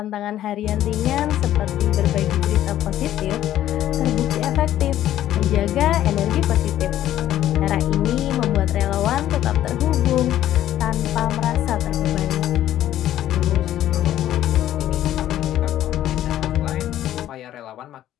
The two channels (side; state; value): right; quieter; 12.5 dB